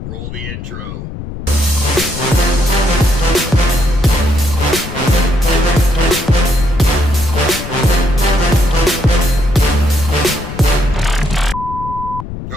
roll the intro.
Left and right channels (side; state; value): left; noise; rumble, 10 dB below the sound